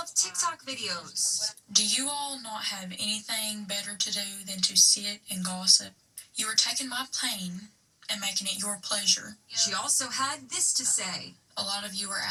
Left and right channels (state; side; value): identical; both; correlation 1.00